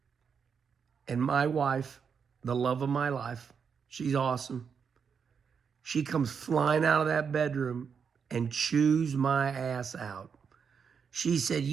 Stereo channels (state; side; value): quieter; left; 6.5 dB